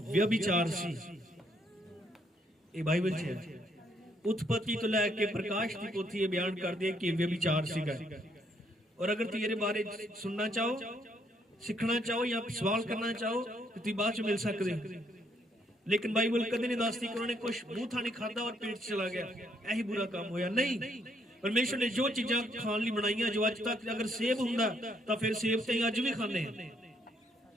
ਵਿਅਭਿਚਾਰ ਸੀ। ਇਹ ਬਾਈਬਲ 'ਚ ਹੈ। ਉਤਪਤੀ ਤੋਂ ਲੈ ਕੇ ਪ੍ਰਕਾਸ਼ ਦੀ ਪੋਥੀ ਇਹ ਬਿਆਨ ਕਰਦੀ ਹੈ ਕਿ ਵਿਅਭਿਚਾਰ ਸੀਗਾ। ਔਰ ਅਗਰ ਤੁਸੀਂ ਇਹਦੇ ਬਾਰੇ ਸੁਣਨਾ ਚਾਹੋ, ਸਿੱਖਣਾ ਚਾਹੋ ਜਾਂ ਸਵਾਲ ਕਰਨਾ ਚਾਹੋ ਤਾਂ ਤੁਸੀਂ ਬਾਅਦ 'ਚ ਮਿਲ ਸਕਦੇ ਹੋ, ਲੇਕਿਨ ਬਾਈਬਲ ਕਦੇ ਨਹੀਂ ਦੱਸਦੀ ਕਿ ਉਹਨਾਂ ਨੇ ਕੁਝ ਮੂੰਹ ਥਾਣੀ ਖਾਧਾ ਔਰ ਪੇਟ 'ਚ ਚਲਾ ਗਿਆ, ਇਹੀ ਬੁਰਾ ਕੰਮ ਹੋਇਆ। ਨਹੀਂ, ਪਰਮੇਸ਼ਰ ਨੇ ਜੋ ਚੀਜ਼ਾਂ ਖਾਣ ਲਈ ਬਣਾਈਆਂ, ਜੋ ਅੱਜ ਤੱਕ ਅਗਰ ਸੇਬ ਹੁੰਦਾ ਤਾਂ ਫਿਰ ਸੇਬ ਤੇ ਅੱਜ ਵੀ ਖਾਂਦੇ ਆ।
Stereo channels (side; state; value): both; normal; correlation 0.71